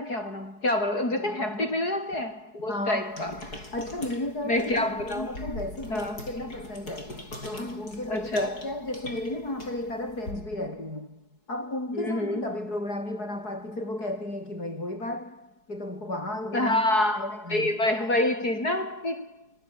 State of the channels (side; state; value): right; late; 4.7 ms